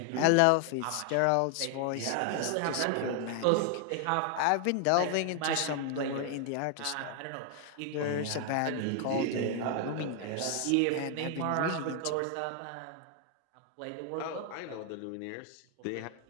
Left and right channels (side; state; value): both; different; correlation 0.00